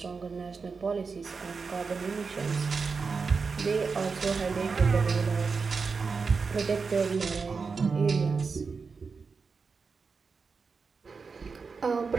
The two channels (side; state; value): left; quieter; 4.9 dB